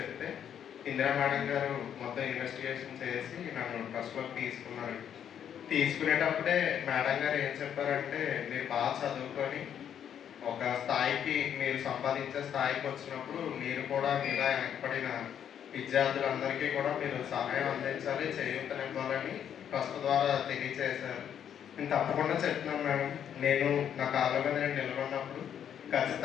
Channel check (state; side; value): quieter; right; 9.1 dB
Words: ఇందిరా మేడం గారు మొత్తం ఇన్వెస్టిగేషన్ చేసి నన్ను ట్రస్ట్లోకి తీసుకున్నారు. తీసుకునేటప్పుడే మేడం గారు ఏం చెప్పారంటే, మీరు బాగా చదువుకొని ఒక స్థాయికి మీరు సంపాదించే స్థాయికి వచ్చినప్పుడు మీరు కూడా మీలా వెనకబడిన విద్యార్థులందరికీ కూడా మీరు సహాయం అందించాలి, చేయూతనివ్వాలని ట్రస్ట్ ద్వారా తెలియజేశారు. నేను తప్పకుండా చెప్తున్నాను మేడం, నేను నా కాళ్ళ మీద నేను నిలబడినప్పుడు